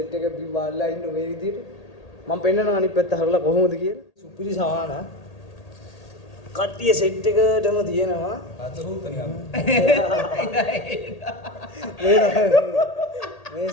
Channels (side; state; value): right; late; 1.8 ms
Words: එක බිම්බාලා ඉන්න මේ විදිහට. මම පෙන්නනවා අනිත් පැත්ත හරලා කොහොමද කියලා. සුපිරි සවාන කට්ටිය සෙට් එකටම තියෙනවා. මේ